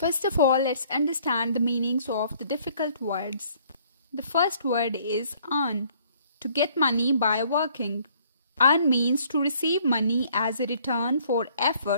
of all, let's understand the meanings of the difficult words. The first word is earn, to get money by working. Earn means to receive money as a return for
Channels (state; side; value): inverted; both; correlation -0.61